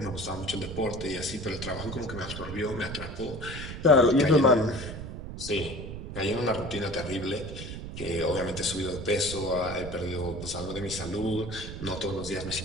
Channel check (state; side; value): noise; right; rumble, 9 dB below the sound